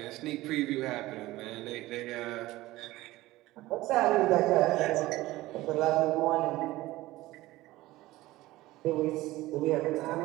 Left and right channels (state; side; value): quieter; left; 17.8 dB